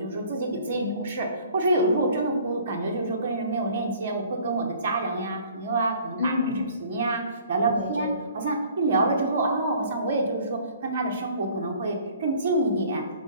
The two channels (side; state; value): both; inverted; correlation -0.53